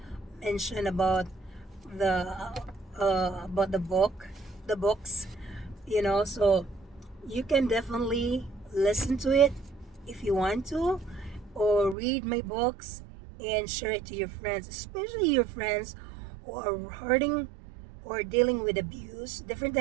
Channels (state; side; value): drops out; left; at 12.0 s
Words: mentioned about the books, So you can definitely listen to it if you want to, or read my books and share it to your friends, especially your friends who are hurting or dealing with abuse, different